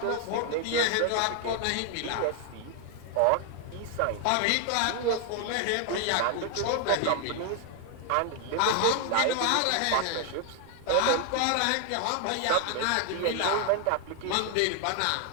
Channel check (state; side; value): different; both; correlation 0.00